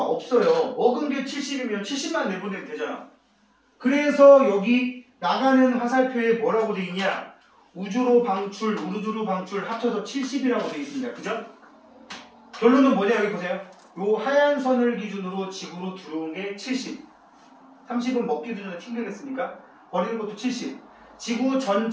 없어요. 먹은 게 70이면 70만 내보내면 되잖아. 그래서 여기 나가는 화살표에 뭐라고 돼 있냐? 우주로 방출, 우주로 방출 합쳐서 70이라고 돼 있습니다. 그죠? 결론은 뭐냐? 여기 보세요. 요 하얀 선을 기준으로 지구로 들어온 게 70. 30은 먹기도 전에 튕기겠습니까? 버리는 것도 70. 지구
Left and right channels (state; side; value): identical; both; correlation 1.00